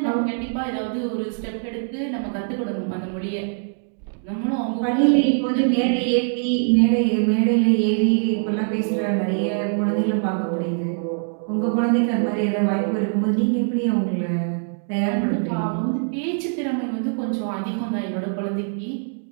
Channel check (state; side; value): silent; left; 63 dB below the other